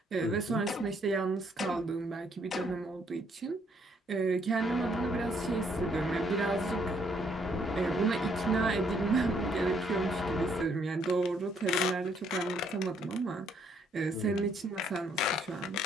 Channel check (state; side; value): normal; both; correlation 0.69